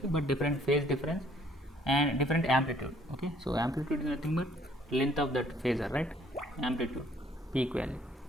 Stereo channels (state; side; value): normal; both; correlation 0.62